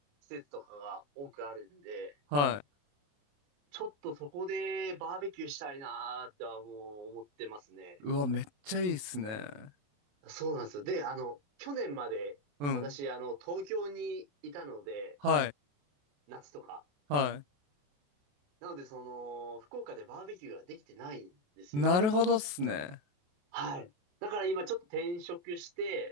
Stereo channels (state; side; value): late; left; 28 ms